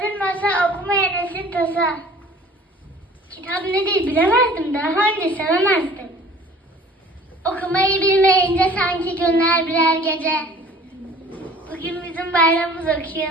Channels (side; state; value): both; normal; correlation 0.48